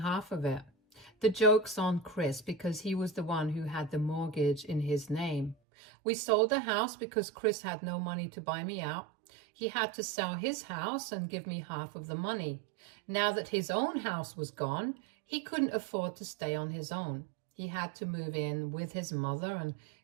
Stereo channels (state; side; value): drops out; left; at 5.6 s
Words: of it. The joke's on Chris because he was the one who had the mortgage in his name. We sold the house because Chris had no money to buy me out. He had to sell his house and give me half of the money. Now that his own house was gone, he couldn't afford to stay on his own. He had to move in with his mother, and